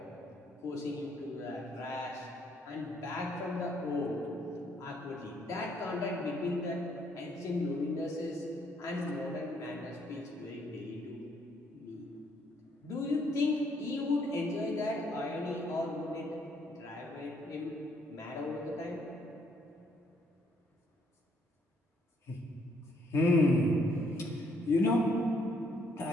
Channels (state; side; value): normal; both; correlation 0.69